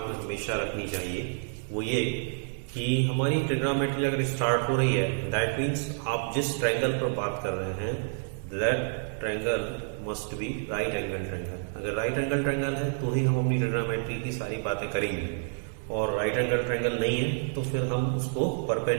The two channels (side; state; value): left; silent; digital silence